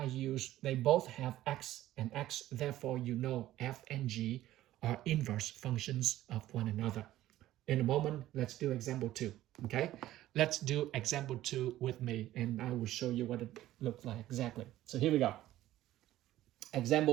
they both have x and x, therefore you know f and g are inverse functions of one another. In a moment, let's do example 2, okay? Let's do example 2 with me, and I will show you what it looks like exactly. So here we go.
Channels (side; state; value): left; quieter; 14.5 dB